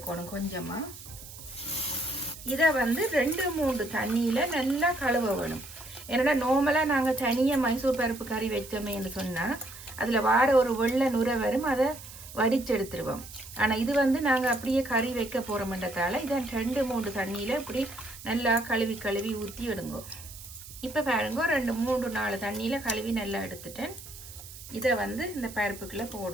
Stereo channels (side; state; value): right; noise; hiss, 15 dB below the sound